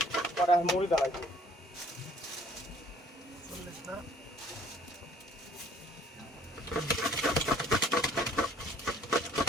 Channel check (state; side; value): normal; both; correlation 0.58